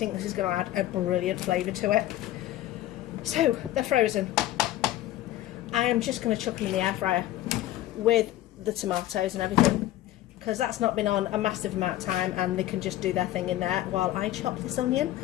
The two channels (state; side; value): quieter; right; 14.4 dB